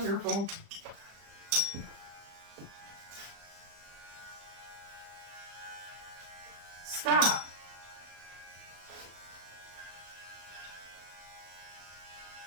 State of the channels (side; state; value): left; late; 35 ms